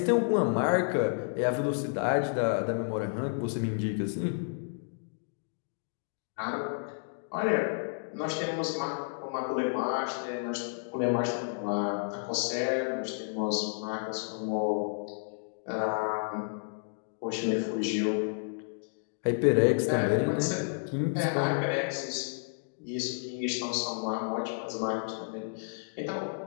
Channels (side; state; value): right; silent; digital silence